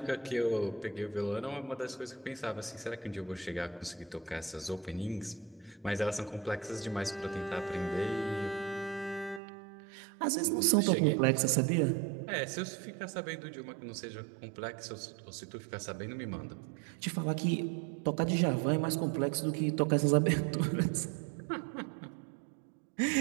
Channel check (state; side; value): drops out; left; at 9.4 s